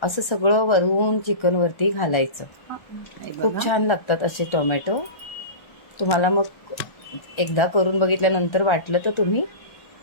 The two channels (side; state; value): right; late; 1.3 ms